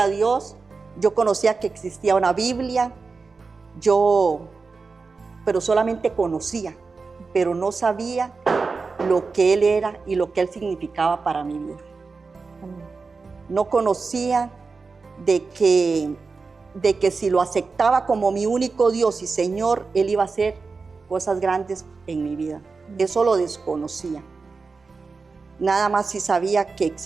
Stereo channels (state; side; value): quieter; left; 4.4 dB